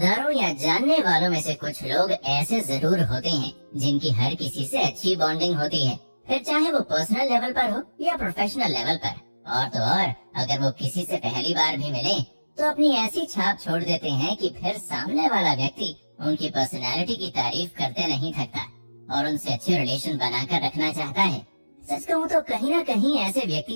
या जानने वालों में से कुछ लोग ऐसे जरूर होते हैं जिनकी हर किसी से अच्छी बॉन्डिंग होती है, फिर चाहे वो पर्सनल लेवल पर हो या प्रोफेशनल लेवल पर। और तो और अगर वो किसी से पहली बार भी मिले तो अपनी ऐसी छाप छोड़ देते हैं कि फिर सामने वाला व्यक्ति उनकी पर्सनैलिटी की तारीफ करते नहीं थकता और उनसे अच्छे रिलेशन बनाकर रखना चाहता है। सच कहूँ तो कहीं ना कहीं ऐसे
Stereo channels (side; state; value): both; inverted; correlation -1.00